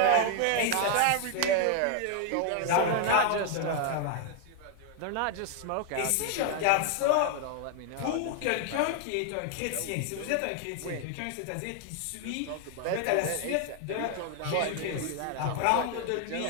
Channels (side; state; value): both; different; correlation 0.00